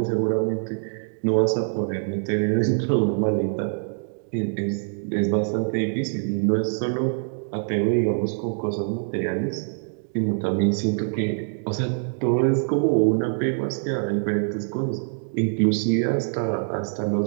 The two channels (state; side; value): silent; left; digital silence